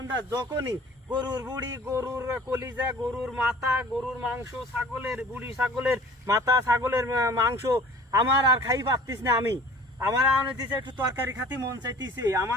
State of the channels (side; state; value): both; normal; correlation 0.47